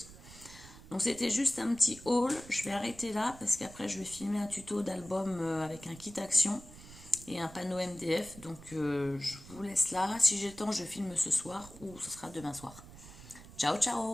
Donc c'était juste un petit haul, je vais arrêter là parce qu'après je vais filmer un tuto d'album avec un kit action et un panneau MDF. Donc je vous laisse là, si j'ai le temps je filme ce soir ou ce sera demain soir. Ciao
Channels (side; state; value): right; noise; rumble, 18 dB below the sound